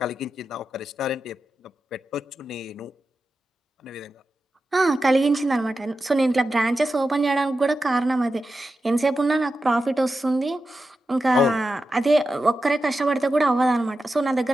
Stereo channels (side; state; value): both; normal; correlation 0.91